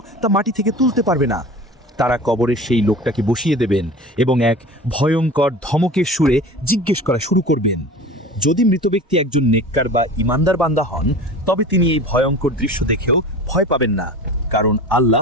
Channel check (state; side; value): normal; both; correlation 0.37